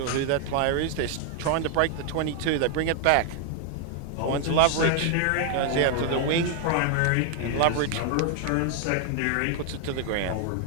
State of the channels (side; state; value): both; different; correlation 0.00